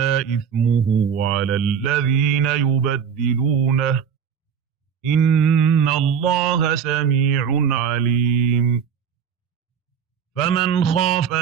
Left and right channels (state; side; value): quieter; left; 7.5 dB